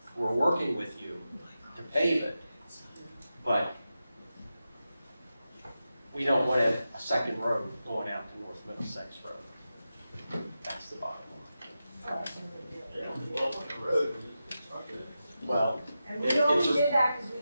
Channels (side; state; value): both; inverted; correlation -0.91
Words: We're working with you to pave it, but we don't want a second road going out to North Middlesex Road. That's the bottom line. Well, And we only did that because we